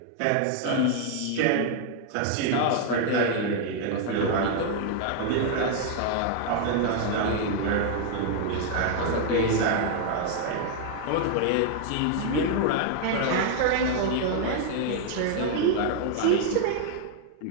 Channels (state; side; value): different; both; correlation 0.00